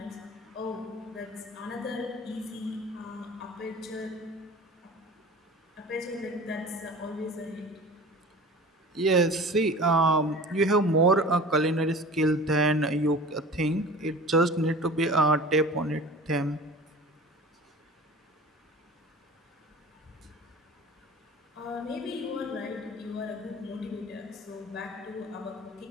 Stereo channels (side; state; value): both; normal; correlation 0.40